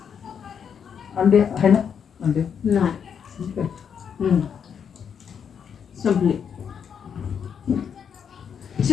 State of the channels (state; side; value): quieter; right; 7.5 dB